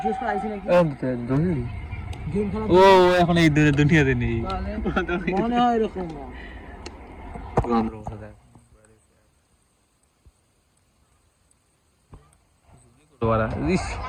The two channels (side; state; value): both; identical; correlation 1.00